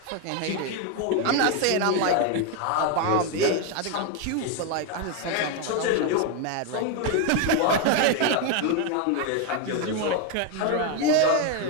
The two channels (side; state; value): both; different; correlation 0.02